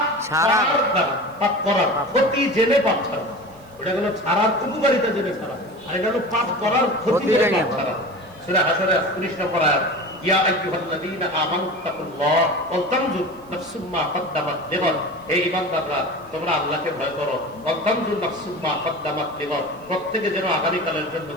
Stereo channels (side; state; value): right; noise; hiss, 29 dB below the sound